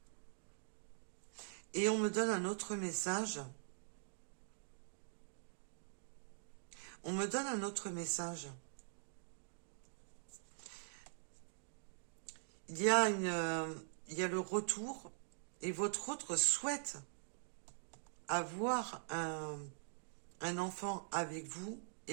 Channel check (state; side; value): silent; left; digital silence